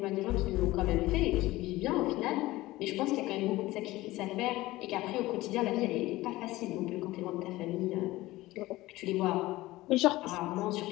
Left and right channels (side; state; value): right; quieter; 18.2 dB